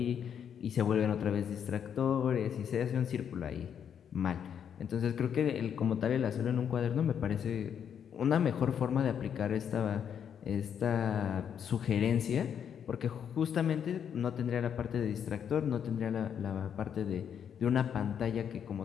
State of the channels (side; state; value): right; quieter; 8.3 dB